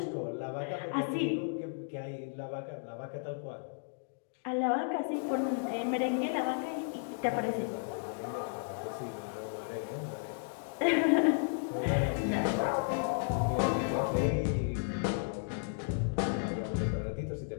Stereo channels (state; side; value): silent; right; digital silence